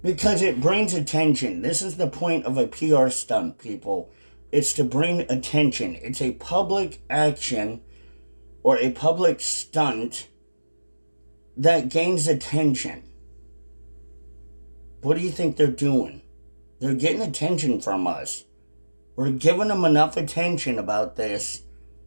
Because it brings attention. This is the point of a PR stunt, people. It's to bring attention. It's a public action or a public stunt that gains attention. What do you think they're doing? They're getting attention from us. We're giving them enough attention about this.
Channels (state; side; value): inverted; both; correlation -1.00